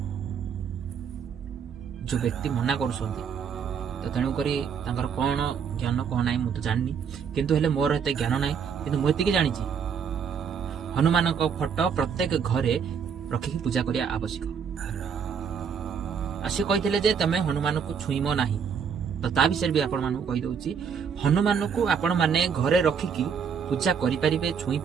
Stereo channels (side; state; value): left; quieter; 6.8 dB